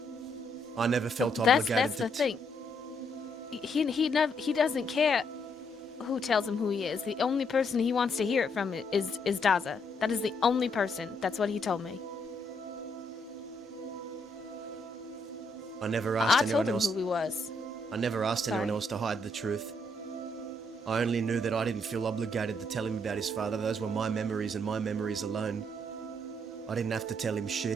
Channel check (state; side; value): normal; both; correlation 0.74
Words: I never felt obligated That's to... the thing. He doesn't care who tells him who he is. The only person he wants to hear it from is Daza. That is the only person. That's what he told me. I never asked I anyone told him else... who he was. I never asked anyone Sorry. else to hide the truth. I only knew that I didn't feel obligated to tell him about his father. Those were my memories and my memories alone. I didn't have to tell him